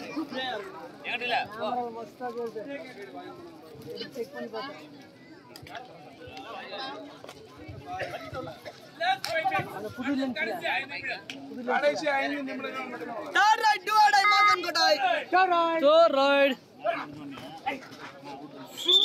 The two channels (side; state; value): both; identical; correlation 1.00